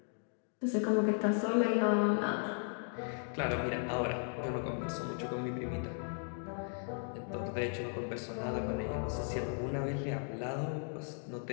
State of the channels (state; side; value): silent; right; 54 dB below the other